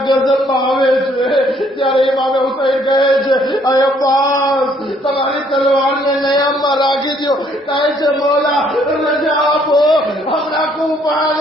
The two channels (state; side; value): normal; both; correlation 0.65